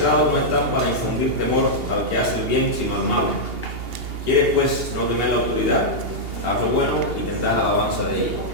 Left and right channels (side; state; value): left; late; 2.8 ms